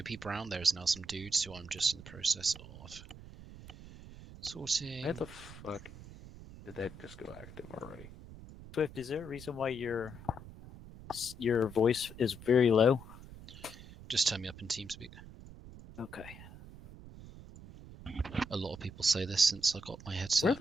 Brown, there is now some dudes who I'm just in the process of sorting. Why the fuck did that just go active already? Swift, is there a reason why your voice is very low? Just turn me up in TeamSpeak. Okay. A lot of people say this since I got my headset.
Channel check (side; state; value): right; noise; rumble, 16 dB below the sound